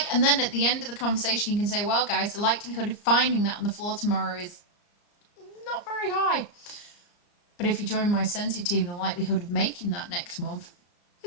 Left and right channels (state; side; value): late; right; 34 ms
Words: and then at the end of the conversation, you can say, well, guys, the likelihood of finding that on the floor tomorrow is not very high. But if you join my Scentsy team, the likelihood of making that next month